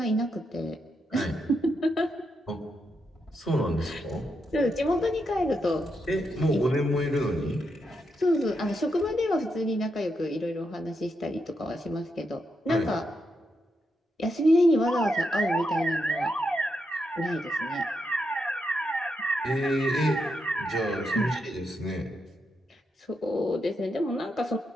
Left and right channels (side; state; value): both; normal; correlation 0.83